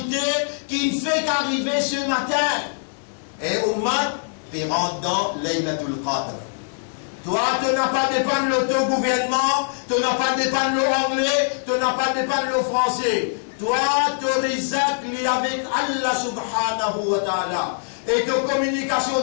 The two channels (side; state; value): right; silent; digital silence